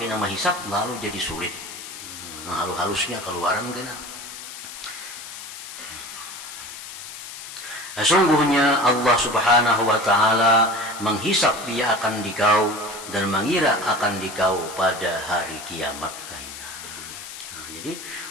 menghisap lalu jadi sulit. Nah halus-halusnya keluaran kena. Sesungguhnya Allah subhanahu wa ta'ala menghisap dia akan dikau dan mengira akan dikau pada hari kiamat. Nah, jadi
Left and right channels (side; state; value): left; noise; hiss, 11 dB below the sound